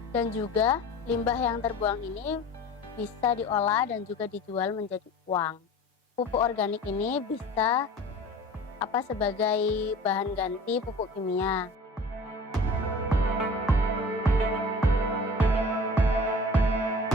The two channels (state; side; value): normal; both; correlation 0.41